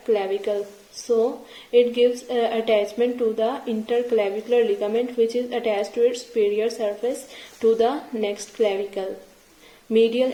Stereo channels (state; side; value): identical; both; correlation 1.00